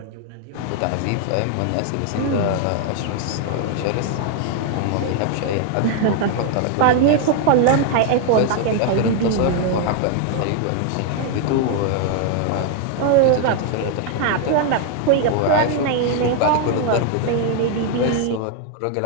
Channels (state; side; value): different; both; correlation 0.00